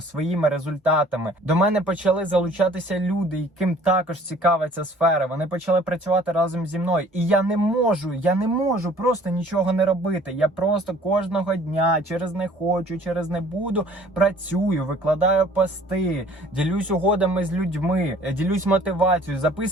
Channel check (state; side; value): normal; both; correlation 0.54